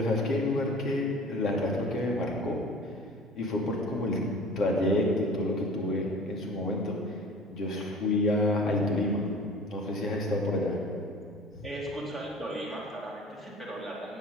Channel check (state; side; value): normal; both; correlation 0.43